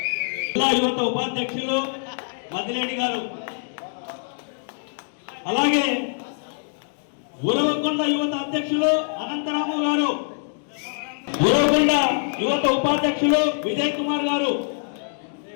జిల్లా యువత ఉపాధ్యక్షులు మంతిరెడ్డి గారు, అలాగే ఉరవకొండ యువత అధ్యక్షులు అనంతరాము గారు, ఉరవకొండ యువత ఉపాధ్యక్షులు విజయ్ కుమార్ గారు,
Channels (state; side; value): silent; right; digital silence